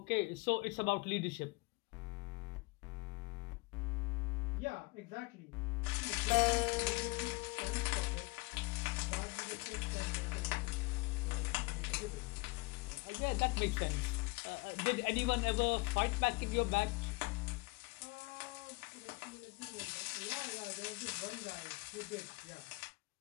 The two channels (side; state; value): right; quieter; 26.3 dB